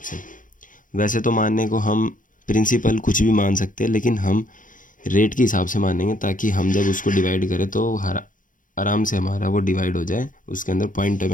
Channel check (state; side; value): late; right; 0.38 ms